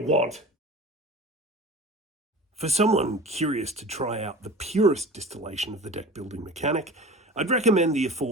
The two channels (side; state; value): both; normal; correlation 0.37